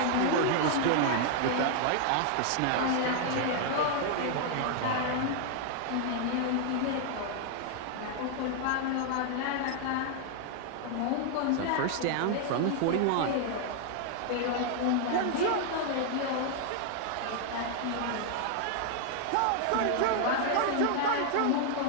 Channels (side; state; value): both; different; correlation 0.00